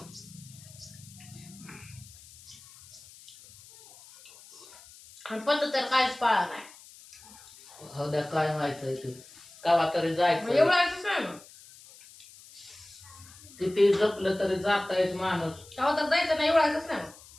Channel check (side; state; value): left; noise; hiss, 21 dB below the sound